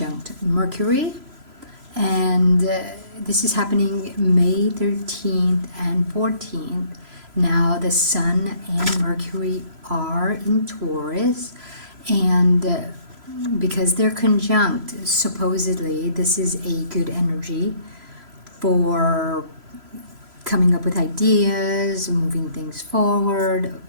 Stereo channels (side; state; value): left; late; 3.0 ms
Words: Mercury, and this is happening May 13th and 14th. Now the Sun and Mercury are in Taurus, and because they're conjunct, supposedly this is a good energy for coming up with ideas, moving things forward.